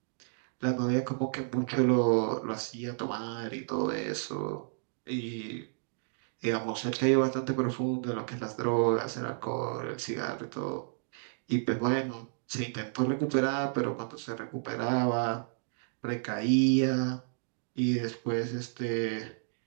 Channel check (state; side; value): silent; left; digital silence